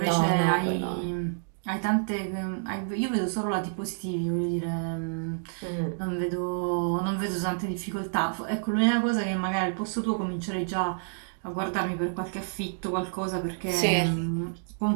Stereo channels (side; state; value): left; silent; digital silence